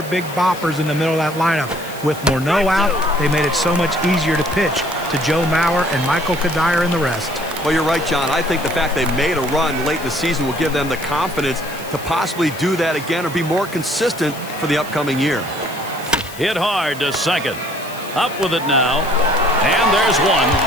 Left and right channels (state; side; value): noise; left; hiss, 16 dB below the sound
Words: big boppers in the middle of that lineup. With Morneau out, they made it so much easier to pitch to Joe Mauer and Michael Kadire and the rest. Well, you're right, John. I think the fact they made a run late in the season will give them the confidence to possibly do that again or be more consistent for the upcoming year. Hit hard to second. Up with it now. And there's one.